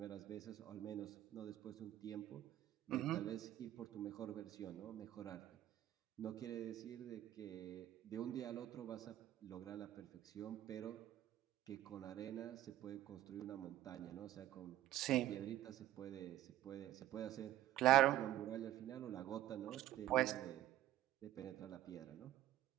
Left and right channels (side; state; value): left; quieter; 13.5 dB